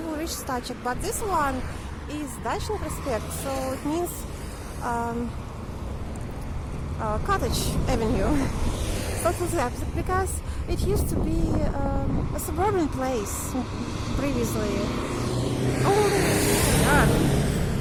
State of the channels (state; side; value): identical; both; correlation 1.00